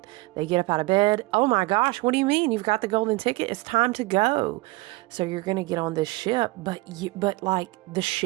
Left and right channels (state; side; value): quieter; left; 22.2 dB